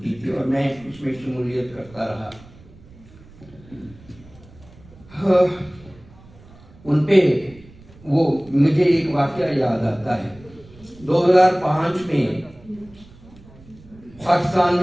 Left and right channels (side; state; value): right; noise; rumble, 23 dB below the sound